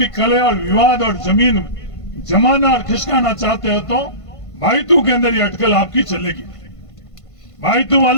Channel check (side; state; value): right; late; 1.5 ms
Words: कले और विवाद और जमीन जमाना और खिसकाना चाहते हो तो भाईतू के अंदर ये अटकल आपकी चलेगी। भाईतू